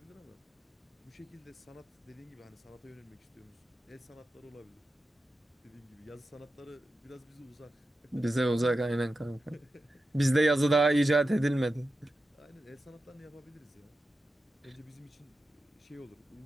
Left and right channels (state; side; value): normal; both; correlation 0.91